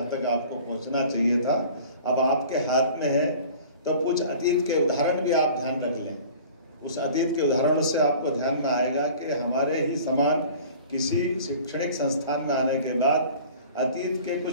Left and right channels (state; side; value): inverted; both; correlation -0.45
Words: तक आपको पहुँचना चाहिए था। अब आपके हाथ में है तो कुछ अतीत के उदाहरण भी आप ध्यान रख लें। उस अतीत के उदाहरणों से आपको ध्यान में आएगा कि हमारे ही समान किसी शैक्षणिक संस्थान में आने के बाद अतीत के